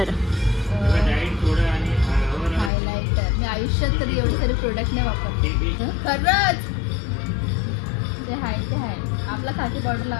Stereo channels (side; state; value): right; drops out; at 2.7 s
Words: हायलायटर मी आयुष्यात तरी एवढे सारे प्रोडक्ट नाही वापरते खरंच. ते हाय आपला खाकी पावडर